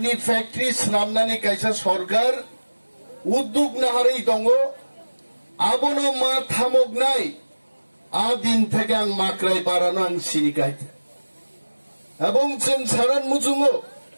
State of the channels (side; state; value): both; inverted; correlation -1.00